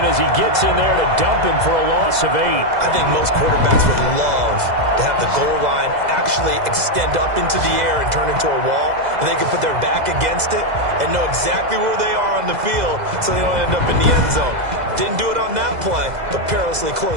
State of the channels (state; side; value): late; left; 2.0 ms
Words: as he gets in there to dump him for a loss of 8. I think most quarterbacks would love to have the goal line actually extend up into the air and turn into a wall, and they can put their back against it and know exactly where they are on the field so they don't end up in the end zone. Didn't do it on that play, but perilously